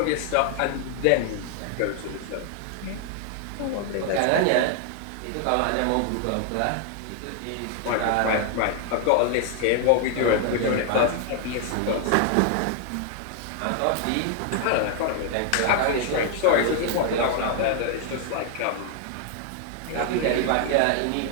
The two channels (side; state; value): both; different; correlation 0.00